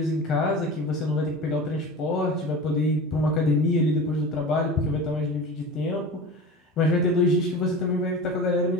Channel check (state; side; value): normal; both; correlation 0.33